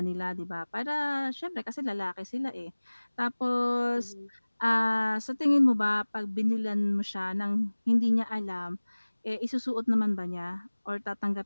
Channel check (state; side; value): inverted; both; correlation -1.00